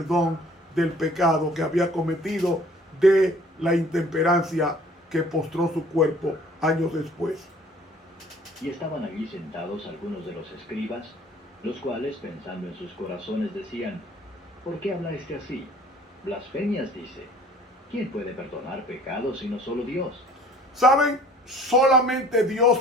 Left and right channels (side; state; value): both; normal; correlation 0.53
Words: del pecado que había cometido, de la intemperancia que postró su cuerpo años después. Y estaban allí sentados algunos de los escribas, los cuales, pensando en sus corazones, decían: ¿por qué habla este así? Blasfemias dice. ¿Quién puede perdonar pecados sino solo Dios? ¿Saben? Solamente Dios